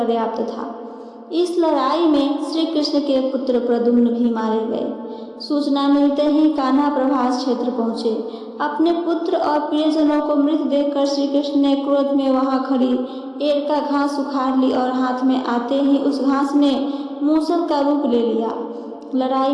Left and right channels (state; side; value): identical; both; correlation 1.00